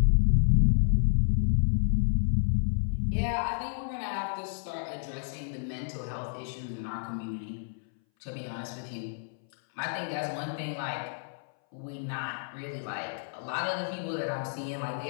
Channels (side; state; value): right; silent; 58 dB below the other